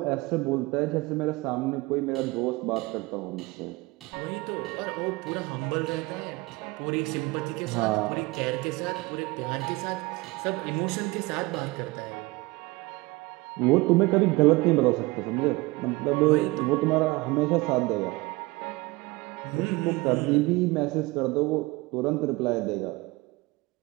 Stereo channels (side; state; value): left; quieter; 22.6 dB